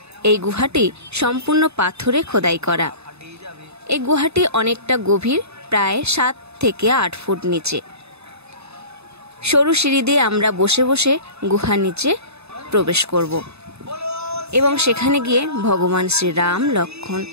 এই গুহাটি সম্পূর্ণ পাথরে খোদাই করা। এই গুহাটি অনেকটা গভীর, প্রায় 7 থেকে 8 ফুট নিচে। সরু সিঁড়ি দিয়ে আমরা বসে বসে গুহার নিচে প্রবেশ করব এবং সেখানে গিয়ে ভগবান শ্রীরাম, লক্ষ্মণ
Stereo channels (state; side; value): late; left; 0.79 ms